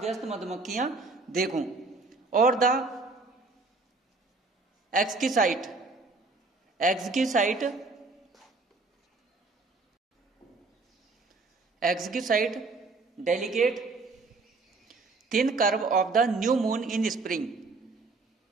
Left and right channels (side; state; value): left; quieter; 3.7 dB